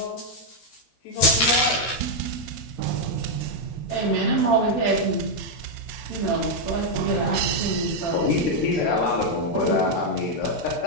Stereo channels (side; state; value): right; late; 13 ms